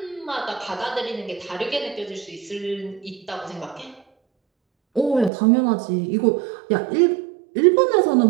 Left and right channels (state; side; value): drops out; left; at 5.3 s